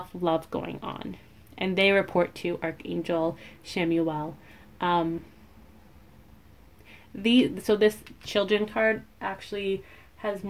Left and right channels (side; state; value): both; identical; correlation 1.00